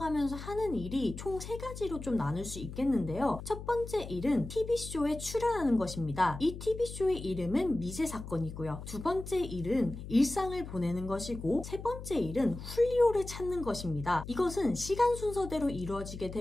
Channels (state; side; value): noise; left; hum, 10 dB below the sound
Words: 하는 일이 총 3가지로 좀 나눌 수 있겠는데요. 첫 번째 일은 TV쇼에 출연하는 것입니다. 이 TV쇼의 이름은 미제 사건이고요. 두 번째 일은 일상을 보내는 것이고 세 번째 일은 훌리오를 찾는 것입니다. 이것은 시간 순서대로 이루어지게